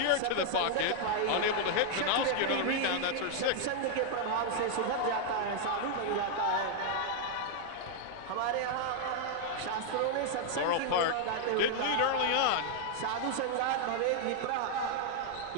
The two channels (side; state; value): both; different; correlation 0.00